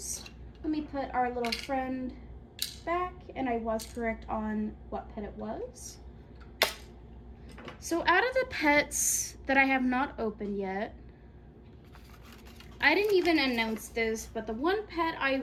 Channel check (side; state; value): both; identical; correlation 1.00